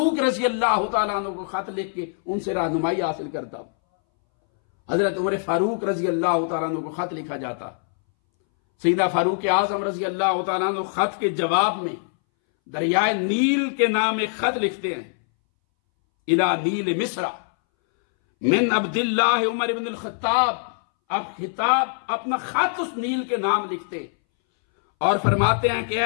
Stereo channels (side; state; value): right; silent; 62 dB below the other